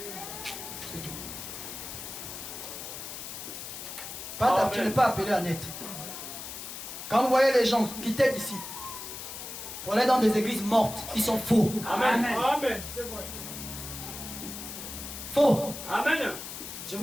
C'est tout. Pas, tu n'es pas appelé à naître. Quand vous voyez les gens quitter d'ici, Pour aller dans des églises mortes qui sont faux. Amen. Amen. C'est vrai. Faux. Amen. Je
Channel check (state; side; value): noise; left; hiss, 9 dB below the sound